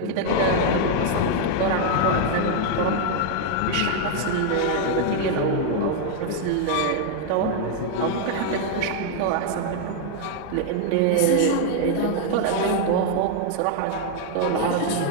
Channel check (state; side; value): different; both; correlation 0.00